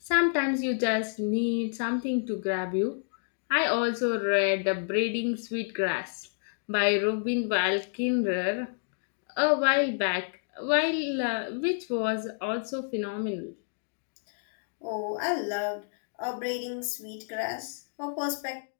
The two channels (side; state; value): right; silent; digital silence